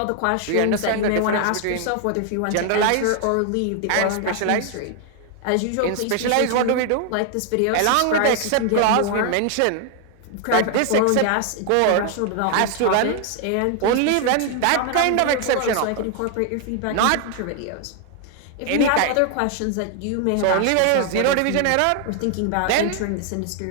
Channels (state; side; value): different; both; correlation 0.00